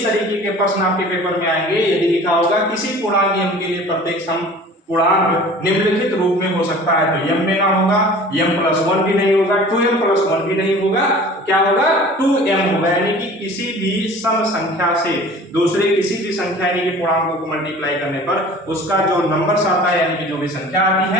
तरीके के प्रश्न आपके पेपर में आएंगे। यदि लिखा होगा किसी पूर्णांक m के लिए प्रत्येक सम पूर्णांक निम्नलिखित रूप में हो सकता है, तो m में ना होगा, m + 1 भी नहीं होगा, 2m + 1 भी नहीं होगा, क्या होगा 2m होगा। यानी कि किसी भी सम संख्या से दूसरे किसी भी संख्या यानी कि पूर्णांकों को मल्टीप्लाई करने पर उसका जो नंबर आता है यानी कि जो भी संख्या आती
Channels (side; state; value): both; normal; correlation 0.44